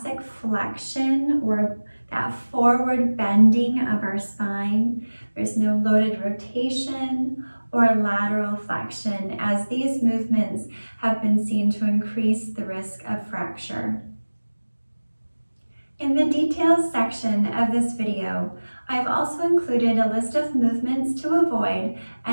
flexion or that forward bending of our spine. There's no loaded rotation or lateral flexion, as these movements have been seen to increase the risk of fracture. In the details section of this video, I've also included a list of movements to avoid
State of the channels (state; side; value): inverted; both; correlation -1.00